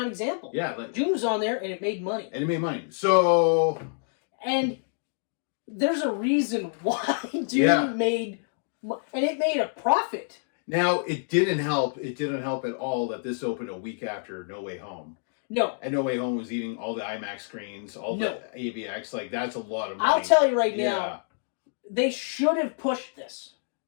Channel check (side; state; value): right; silent; digital silence